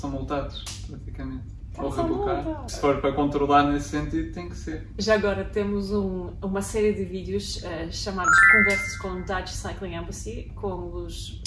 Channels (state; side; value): identical; both; correlation 1.00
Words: multados, praticamente. Ou rebocar. Se for para controlar nesse sentido, tem que ser. Já agora temos uma série de vídeos chamados Conversas com Dutch Cycling Embassy, com os